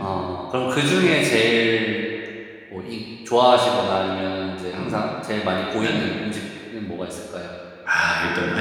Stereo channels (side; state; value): both; identical; correlation 1.00